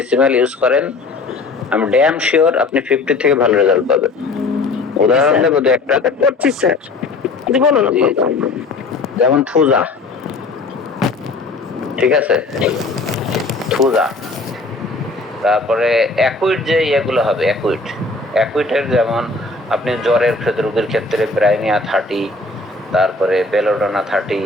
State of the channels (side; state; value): right; quieter; 3.5 dB